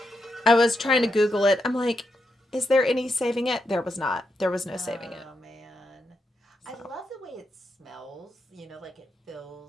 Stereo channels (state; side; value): normal; both; correlation 0.83